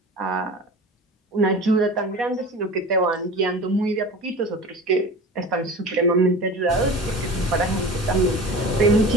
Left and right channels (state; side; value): normal; both; correlation 0.35